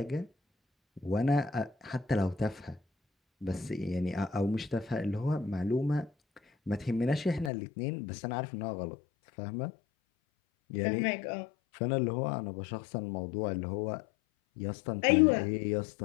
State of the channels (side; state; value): right; drops out; at 7.5 s